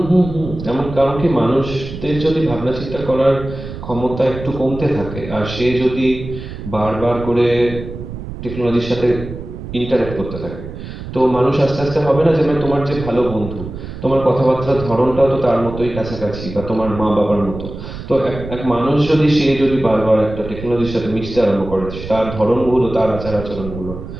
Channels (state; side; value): noise; right; rumble, 10 dB below the sound